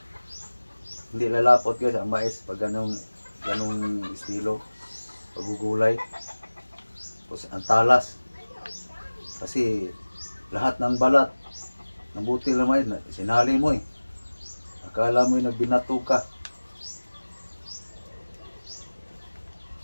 Hindi lalapot guys ang mais pag ganung estilo pagugulay. Tapos ang talas. Kasi lahat ng balat ng butil ng mais sinali mo eh. Akala mo yung nagbinato ka.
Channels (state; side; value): inverted; both; correlation -1.00